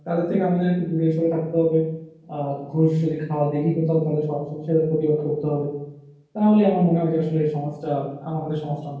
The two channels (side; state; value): both; identical; correlation 1.00